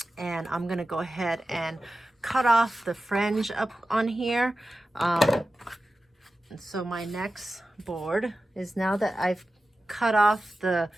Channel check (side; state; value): both; normal; correlation 0.94